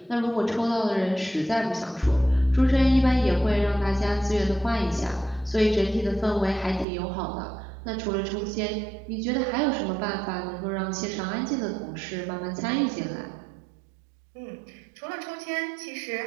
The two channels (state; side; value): drops out; left; at 6.9 s